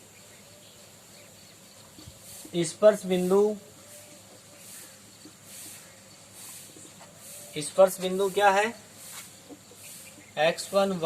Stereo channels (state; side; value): identical; both; correlation 1.00